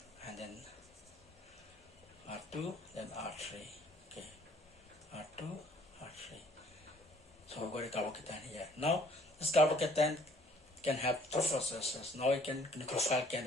and then R2, then R3. Okay, R2, R3. So we got a carbocation here. Now this carbocation can have two processes. Now nucleophile can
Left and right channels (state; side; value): normal; both; correlation 0.58